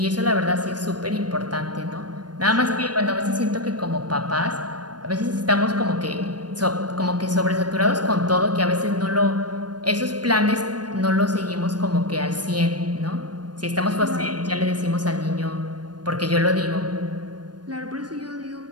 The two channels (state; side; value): late; left; 0.69 ms